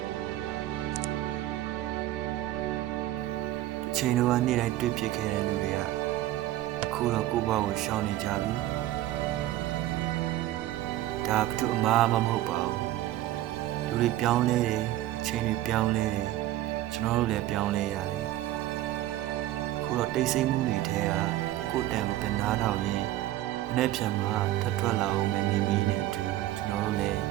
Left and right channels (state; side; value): quieter; left; 14.8 dB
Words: ချိန်တော့နေ့တိုင်းတွေ့ဖြစ်ခဲ့တဲ့လူတွေကအခုတော့ကိုယ့်ဘဝကိုရှောင်နေကြပြီဒါဘယ်သူအမှားမှမဟုတ်ပါဘူးလူတွေပြောင်းလဲတယ်ချိန်တွေပြောင်းလဲတယ်ကျွန်တော်တို့လည်းပြောင်းလဲရတယ်အခုတော့တိတ်ဆိတ်မှုတွေထဲကကိုယ်တန်ကိုပြန်နားထောင်ရင်းမနေ့ပြန်မှာထပ်ထွက်လာအောင်မယ်နေမီးနဲ့အတူကျွန်တော်တို့လည်း